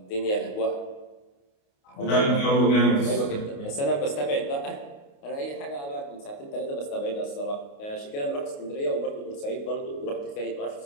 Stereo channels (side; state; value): right; late; 28 ms